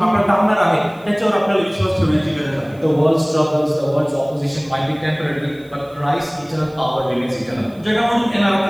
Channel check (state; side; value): noise; right; hiss, 30 dB below the sound